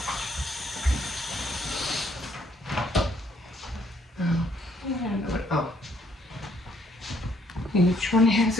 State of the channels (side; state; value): both; normal; correlation 0.68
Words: Each one has